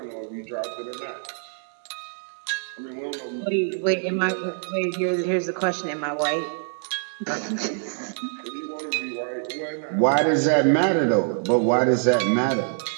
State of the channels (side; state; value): left; silent; digital silence